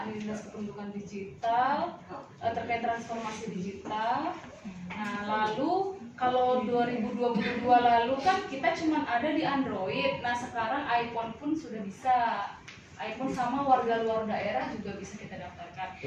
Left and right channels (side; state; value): both; identical; correlation 1.00